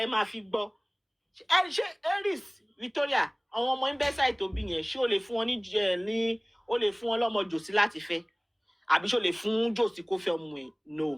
máa fi gbọ́. Ṣé Eris Victoria, àwọn ọmọ Imbesai tó bí yẹn, ṣé o lè fún wọn ní o lè fún wọn lọ́mọ Josi láti fẹ́? Àbí ṣé o lè fún Josi kó fẹ́ ọmọ ẹ̀?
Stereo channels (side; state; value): both; identical; correlation 1.00